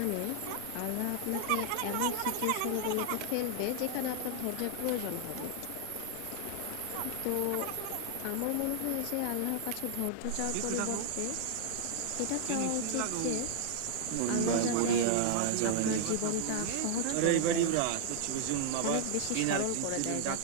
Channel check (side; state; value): both; different; correlation 0.00